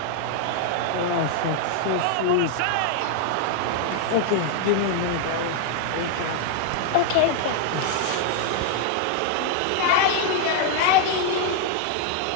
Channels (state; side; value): different; both; correlation 0.00